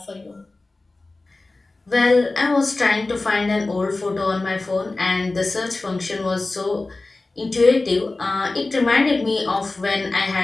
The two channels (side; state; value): right; quieter; 3.2 dB